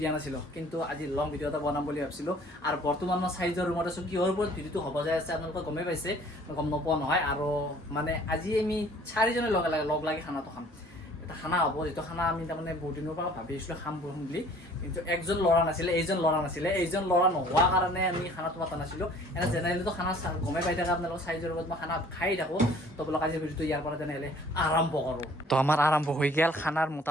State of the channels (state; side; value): normal; both; correlation 0.54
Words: দিয়া নাছিলোঁ কিন্তু আজি লং ভিডিঅ' এটা বনাম বুলি ভাবিছিলোঁ আৰু বৰ্তমান মই চাইজৰ ৰুমত আছোঁ কিহৰ ওপৰত ভিডিঅ'টো হ'ব যায় আছে আপোনালোকে গমেই পাইছে গম নোপোৱা নহয় আৰু মানে আজি আমি 4জনে লগ লাগি খানাটো খাম এটা খানা হ'ব যেটো খানা আমি তাৰমানে বহুত দিনৰ পৰা ভাবি আছিলোঁ খাম বুলি কিন্তু একজন ল'ৰা নাছিলে এইজন ল'ৰা নোহোৱাৰ কাৰণে আমি খানাটো পতা নাছিলোঁ এনে জেনেৰেলিতো খানা গমেই পাই থাকে আপোনালোকৰ চাইজৰ লগত মই খানা খাই থাকোঁ তো বোলক আজিৰ ভিডিঅ'টো ইয়াৰ পৰা তেনেহ'লে আৰম্ভ কৰোঁ তো আমাৰ আৰম্ভ হৈ গ'ল খানাৰ